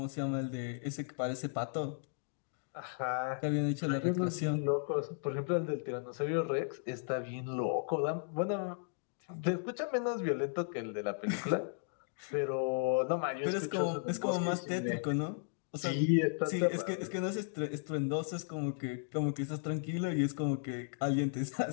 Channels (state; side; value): silent; right; digital silence